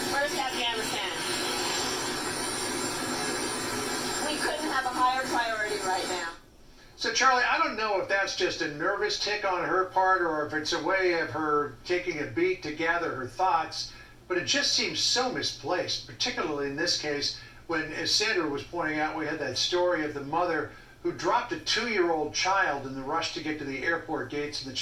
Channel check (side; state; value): both; identical; correlation 1.00